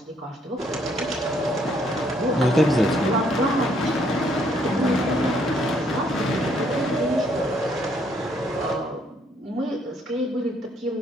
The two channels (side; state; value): both; normal; correlation 0.68